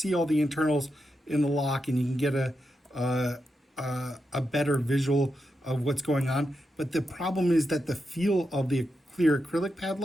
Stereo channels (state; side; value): normal; both; correlation 0.86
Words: all the internals in the lock, and you can get a better visual of what's going on. But the problem is that the feel of the clear acrylic